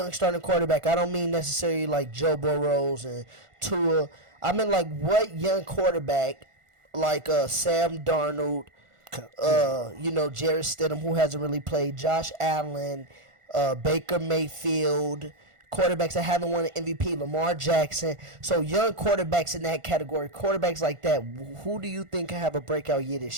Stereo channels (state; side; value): late; left; 1.5 ms